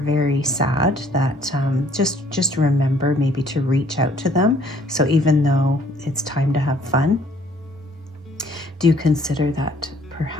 sad that just remember maybe to reach out to them. So even though it's time to have fun, do consider that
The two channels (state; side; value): normal; both; correlation 0.61